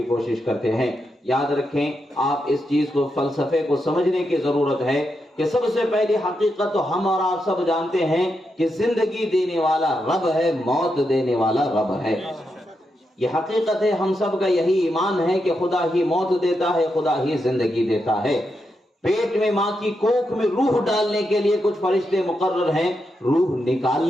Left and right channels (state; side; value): normal; both; correlation 0.84